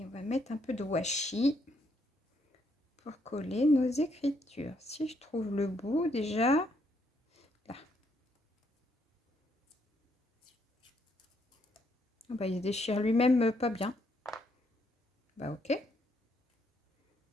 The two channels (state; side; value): normal; both; correlation 0.73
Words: on va mettre un peu de washi pour coller nos écritures. Si je trouve le bout déjà, là. Ah bah, il se déchire lui-même pas bien. Bah ok.